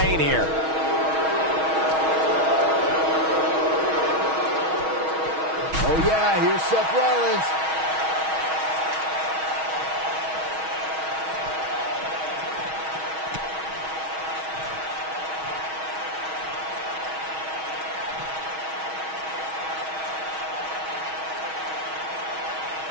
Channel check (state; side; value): late; left; 6.3 ms